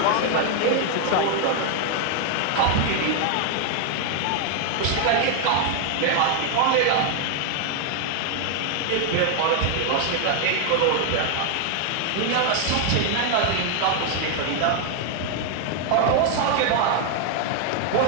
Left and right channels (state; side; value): different; both; correlation 0.00